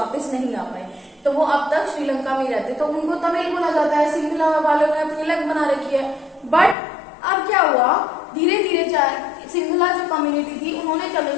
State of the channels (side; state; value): right; drops out; at 6.8 s